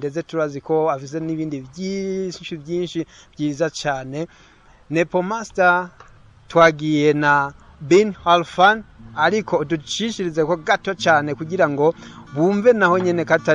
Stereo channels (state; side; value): identical; both; correlation 1.00